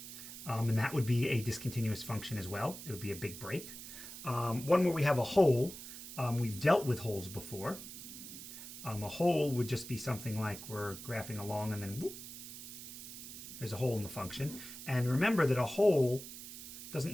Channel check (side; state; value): right; noise; hiss, 11 dB below the sound